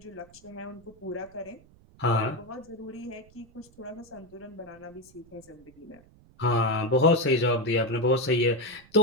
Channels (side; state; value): right; noise; rumble, 26 dB below the sound